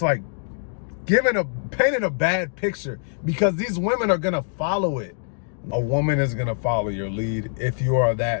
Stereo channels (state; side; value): silent; right; digital silence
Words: like painting a bad picture, because these women are gonna follow it. A woman is gonna follow your lead if you are